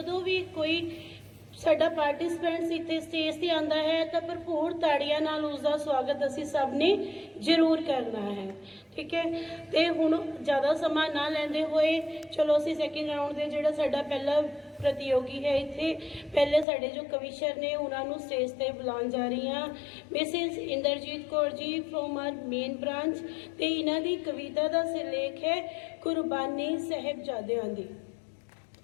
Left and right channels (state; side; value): drops out; right; at 16.7 s